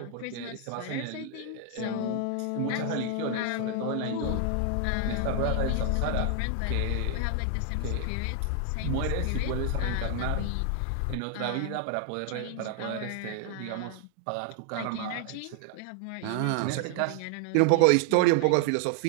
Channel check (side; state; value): both; different; correlation 0.00